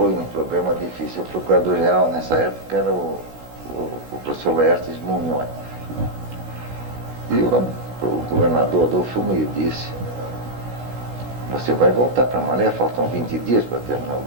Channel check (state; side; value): late; left; 16 ms